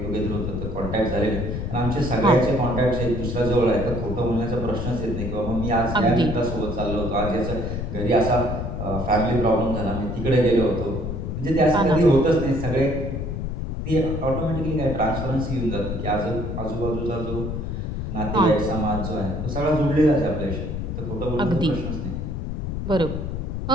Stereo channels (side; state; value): left; noise; rumble, 4 dB below the sound